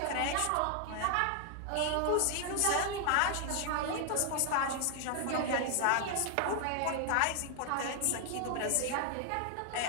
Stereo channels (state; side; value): different; both; correlation 0.00